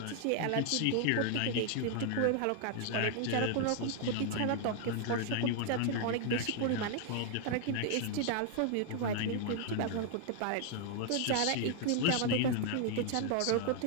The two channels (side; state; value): both; different; correlation 0.00